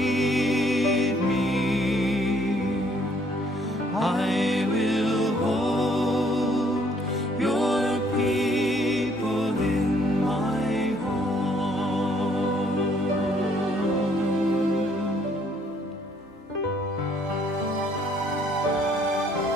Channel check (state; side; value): normal; both; correlation 0.65